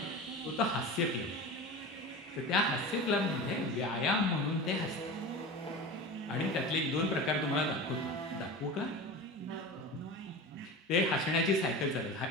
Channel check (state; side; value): normal; both; correlation 0.30